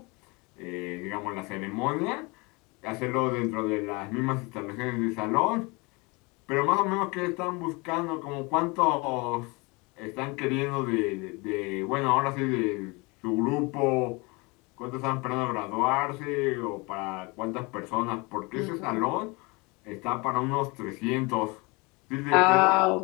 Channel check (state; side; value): quieter; right; 27.0 dB